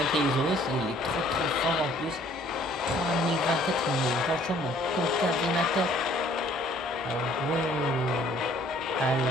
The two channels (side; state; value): both; normal; correlation 0.58